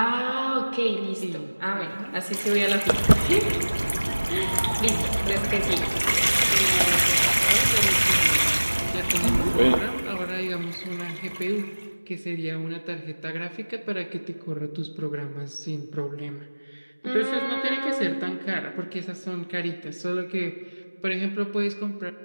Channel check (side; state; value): both; inverted; correlation -1.00